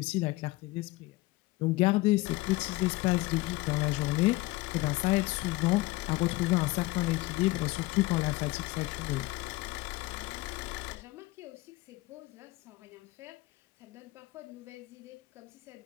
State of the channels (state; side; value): quieter; right; 20.3 dB